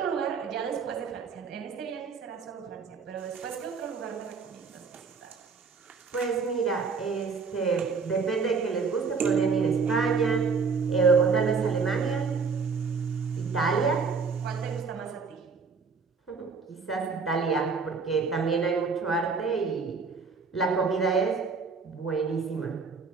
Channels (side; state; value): left; quieter; 5.0 dB